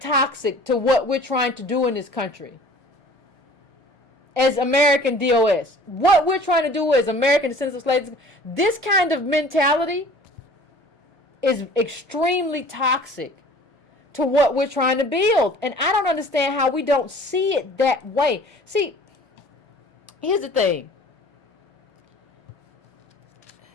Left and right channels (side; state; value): both; normal; correlation 0.48